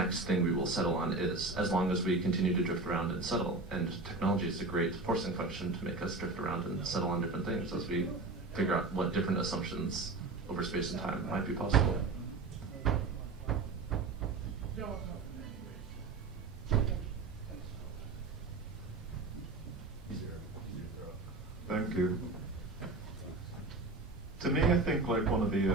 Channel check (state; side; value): quieter; left; 3.6 dB